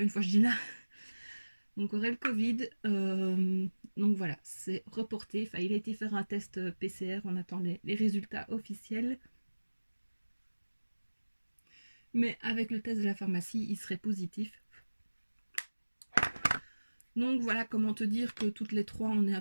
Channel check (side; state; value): both; inverted; correlation -1.00